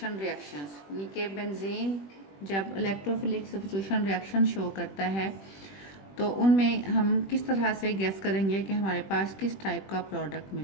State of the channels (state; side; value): late; right; 21 ms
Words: रिएक्शंस, यानी कि बेंजीन जब इलेक्ट्रोफिलिक सब्स्टिट्यूशन रिएक्शन शो करता है तो उनमें हम किस तरह से गेस करेंगे कि हमारे पास किस टाइप का प्रोडक्ट